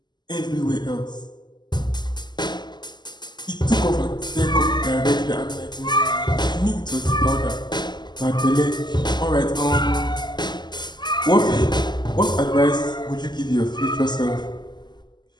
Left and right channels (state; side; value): late; right; 0.21 ms